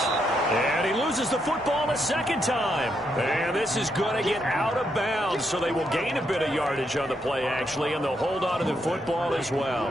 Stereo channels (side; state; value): both; normal; correlation 0.79